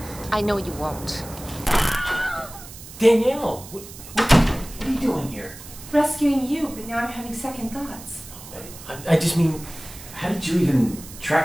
I know you won't. Danielle, what are you doing here? Rescuing you, but now I'm having second thoughts. I just mean, how did you even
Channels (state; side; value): noise; right; hiss, 16 dB below the sound